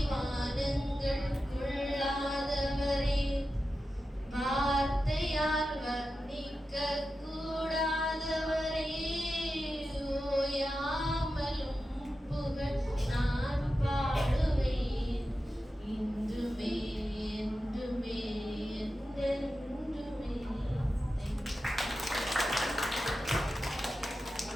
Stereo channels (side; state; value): both; normal; correlation 0.92